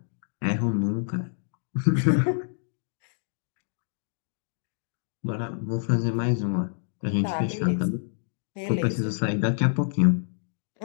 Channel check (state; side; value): silent; right; digital silence